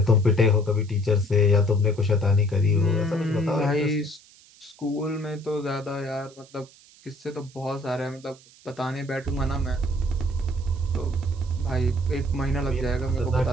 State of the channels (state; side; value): noise; right; hiss, 25 dB below the sound